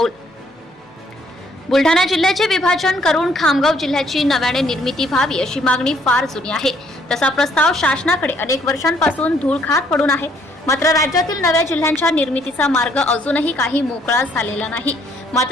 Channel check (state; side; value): normal; both; correlation 0.66